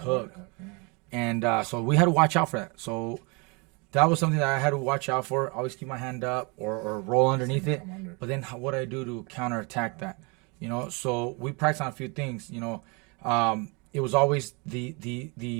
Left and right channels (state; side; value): quieter; left; 30.7 dB